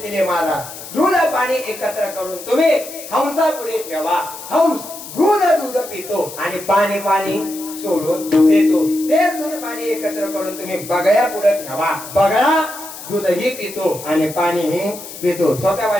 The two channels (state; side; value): noise; left; hiss, 13 dB below the sound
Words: मला दूध पाणी एकत्र करून तुम्ही हंसा पुढे ठेवा. हंस दूध पितो आणि पाणी सोडून देतो. ते दूध पाणी एकत्र करून तुम्ही बगळ्या पुढे ठेवा. बगळा दूधही पितो आणि पाणीही पितो. सोप्या